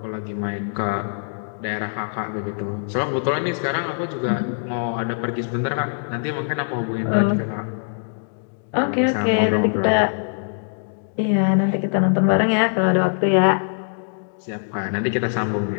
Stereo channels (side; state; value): right; silent; digital silence